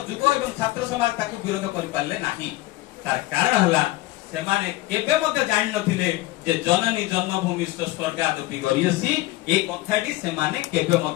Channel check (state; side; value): quieter; right; 18.3 dB